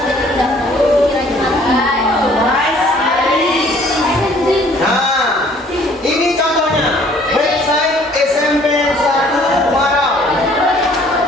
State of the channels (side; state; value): both; normal; correlation 0.57